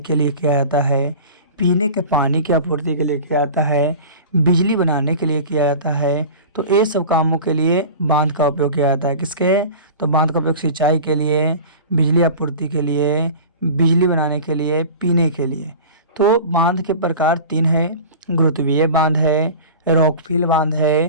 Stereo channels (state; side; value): inverted; both; correlation -0.36